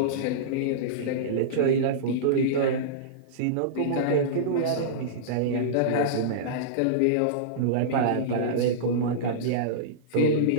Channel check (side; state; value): both; different; correlation -0.04